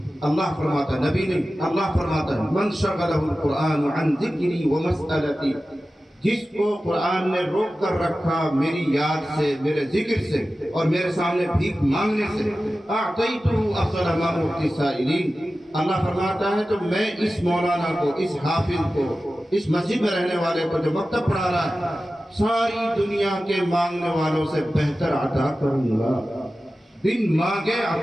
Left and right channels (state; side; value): normal; both; correlation 0.95